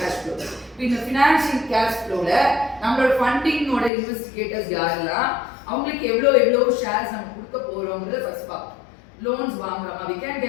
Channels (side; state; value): right; drops out; at 3.9 s